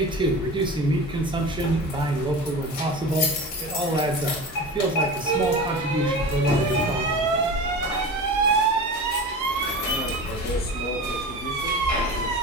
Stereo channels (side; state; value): both; normal; correlation 0.32